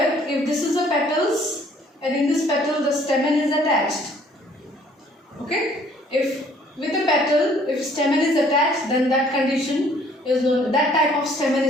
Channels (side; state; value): both; normal; correlation 0.59